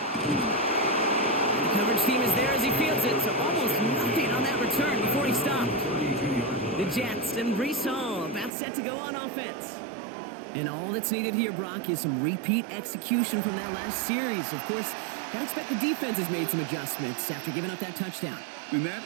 The coverage team is there as he fields it, so almost nothing on that return before he stopped. The Jets and Breece Hall about set to go on offense. And all that's needed here, Brock, is some repeat execution from that last series. Of course, I expect the defense has made some adjustments after giving up that touchdown. And that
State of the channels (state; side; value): drops out; left; at 8.5 s